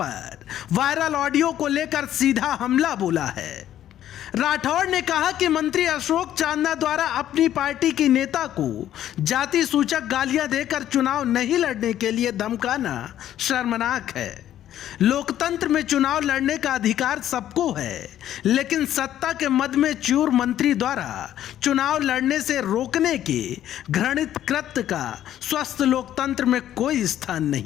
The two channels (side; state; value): right; quieter; 11.7 dB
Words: वायरल ऑडियो को लेकर सीधा हमला बोला है। राठौड़ ने कहा कि मंत्री अशोक चांदना द्वारा अपनी पार्टी की नेता को जाति सूचक गालियां देकर चुनाव नहीं लड़ने के लिए धमकाना शर्मनाक है। लोकतंत्र में चुनाव लड़ने का अधिकार सबको है, लेकिन सत्ता के मद में चूर मंत्री द्वारा चुनाव लड़ने से रोकने के घृणित कृत्य का स्वस्थ लोकतंत्र में कोई स्थान